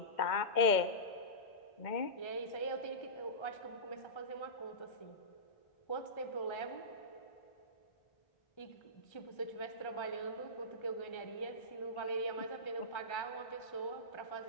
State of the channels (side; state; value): right; late; 2.1 ms